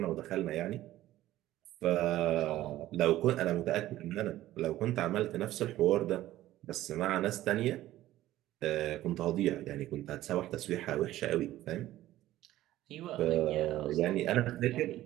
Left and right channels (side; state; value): left; quieter; 14.8 dB